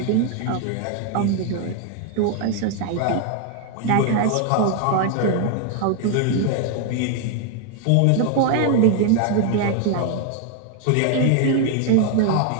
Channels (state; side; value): different; both; correlation 0.01